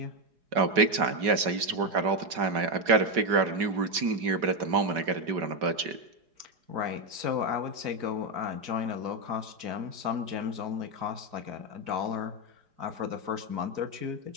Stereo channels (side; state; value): left; late; 5.2 ms